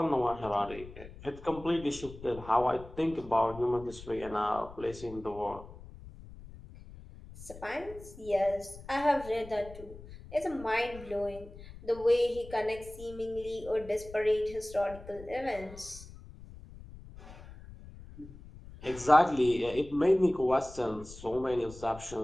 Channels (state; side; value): noise; left; rumble, 16 dB below the sound